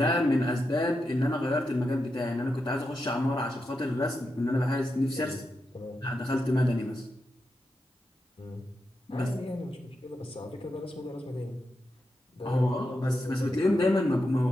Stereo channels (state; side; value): normal; both; correlation 0.87